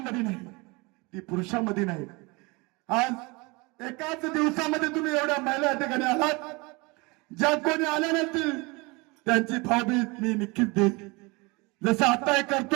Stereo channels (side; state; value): left; quieter; 26.4 dB